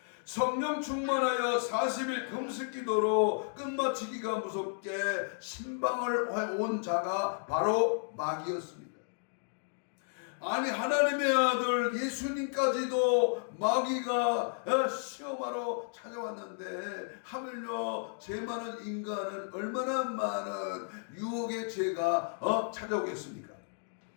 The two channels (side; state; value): right; silent; digital silence